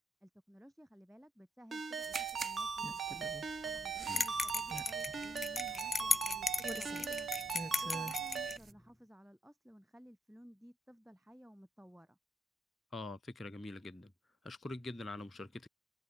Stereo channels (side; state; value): both; normal; correlation 0.75